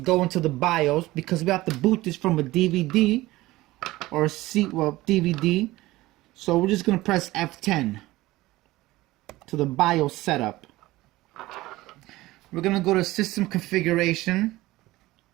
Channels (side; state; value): left; quieter; 18.3 dB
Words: into the BIOS because we have to boot this from a DVD or a DVD. So we're just going to press F10 to the BIOS setup. We're going to go to system configuration.